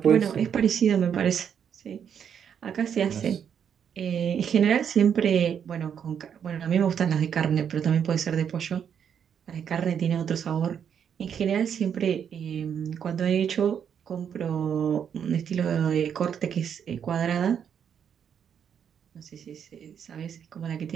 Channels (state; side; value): quieter; left; 8.1 dB